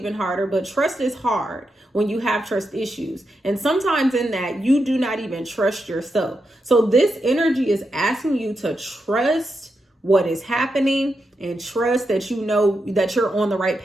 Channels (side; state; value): both; normal; correlation 0.85